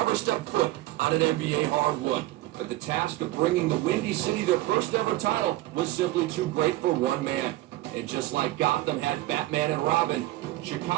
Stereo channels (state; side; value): quieter; left; 17.2 dB